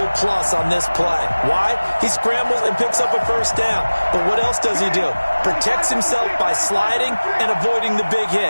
plus on this play. Why? He scrambles and picks up a first down. But what else does he do? Protects himself by sliding and avoiding the big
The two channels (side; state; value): both; inverted; correlation -1.00